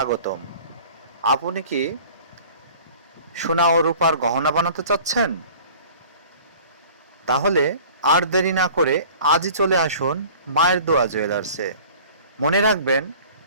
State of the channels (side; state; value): both; inverted; correlation -0.46